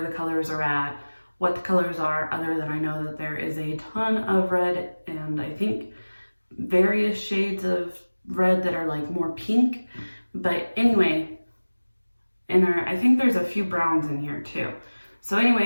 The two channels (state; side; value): inverted; both; correlation -1.00